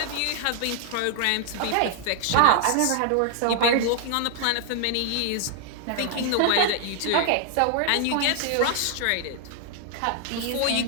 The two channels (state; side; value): different; both; correlation -0.01